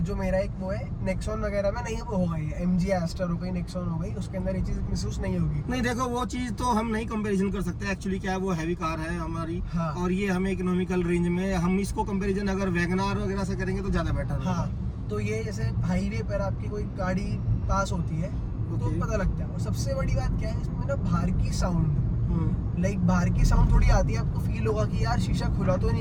मेरा एक वो है नेक्सॉन वगैरह में नहीं होगा, ये MG एस्टर हो गई, नेक्सॉन हो गई, उसके अंदर ये चीज महसूस नहीं होगी। नहीं, देखो वो चीज तो हम नहीं कंपैरिजन कर सकते एक्चुअली, क्या है वो हैवी कार है हमारी। हाँ। और ये हमें इकोनॉमिकल रेंज में, हम इसको कंपैरिजन अगर वैगनार वगैरह से करेंगे तो ज्यादा बेटर है। हाँ, तो ये जैसे हाईवे पर आपकी कोई गाड़ी पास होती है तो Okay. पता लगता है। और सबसे बड़ी बात क्या है इसमें ना, बाहर की साउंड, लाइक बाहर की साउंड थोड़ी आती है, आपको फील होगा कि यार शीशा खुला तो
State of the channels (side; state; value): both; identical; correlation 1.00